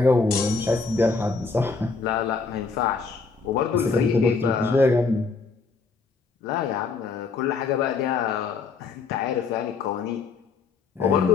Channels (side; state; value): right; quieter; 4.6 dB